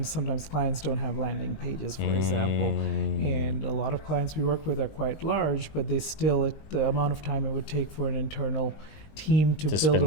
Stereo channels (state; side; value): late; right; 20 ms